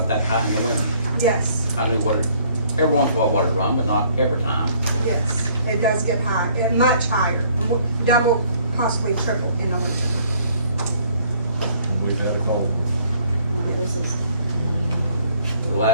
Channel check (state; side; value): inverted; both; correlation -0.61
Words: that high in the winter. Yes, I knew what it, every once in a while what it run, but not every time. yes, it does get high, much higher, double, possibly triple in the winter. We've had a cold. No, this is, The